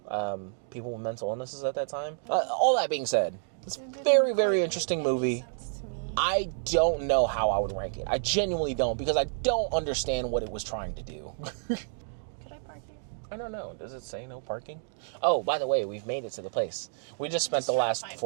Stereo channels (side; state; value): left; silent; digital silence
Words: people with mental illnesses at that time. All that being said, it's a very, very interesting movie. I don't know how I would rank it. I genuinely don't, because I don't understand what it was trying to do. Could I park here? I don't know. Does it say no parking? Oh, by the way, we've made it to the place. We just spent the last